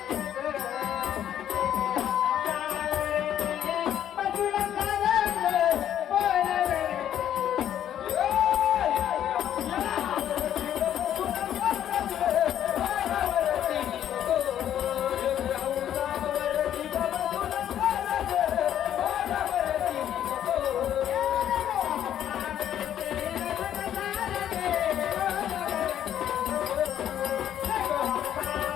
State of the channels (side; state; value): right; quieter; 10.5 dB